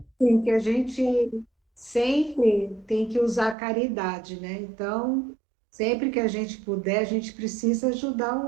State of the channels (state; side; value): drops out; left; at 3.6 s